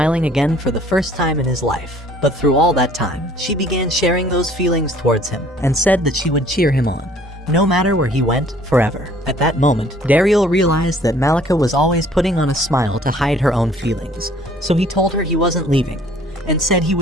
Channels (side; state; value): both; normal; correlation 0.56